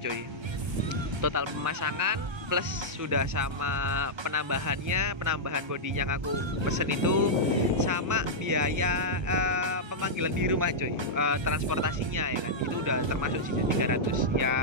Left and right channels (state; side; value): late; left; 1.3 ms